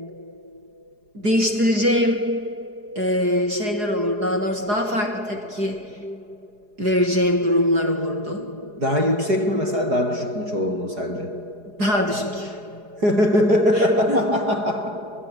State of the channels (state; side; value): late; left; 4.8 ms